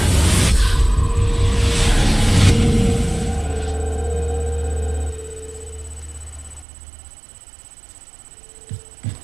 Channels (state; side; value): drops out; left; at 6.7 s